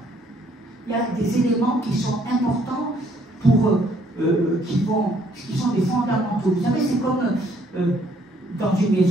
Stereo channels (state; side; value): normal; both; correlation 0.65